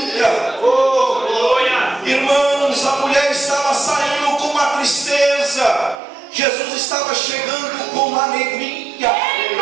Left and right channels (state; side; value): drops out; left; at 6.0 s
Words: Irmãos, a mulher estava saindo com uma tristeza. Jesus estava chegando com uma alegria.